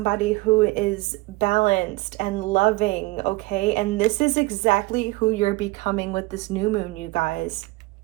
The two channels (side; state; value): left; quieter; 22.0 dB